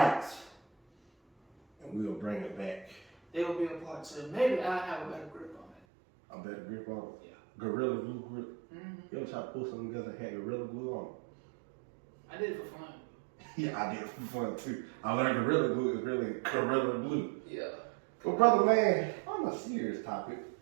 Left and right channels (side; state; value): left; drops out; at 5.8 s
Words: And we'll bring it back. There will be a part 2. Maybe I'll have a better grip on it. A better grip on it? Yeah. Gorilla glue grip? Mm-hmm. You ever try to pull something together and had Gorilla glue on it? I did it for fun. Yeah, I did it for fun too. I learned Gorilla glue is really Gorilla glue. Yeah. Well, brother man, on a serious topic.